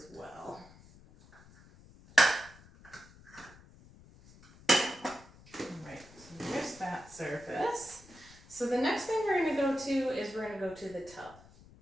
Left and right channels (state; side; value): noise; left; rumble, 23 dB below the sound